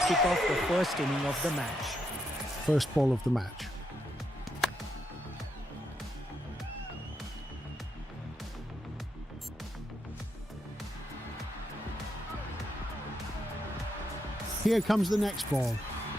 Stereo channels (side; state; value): both; normal; correlation 0.80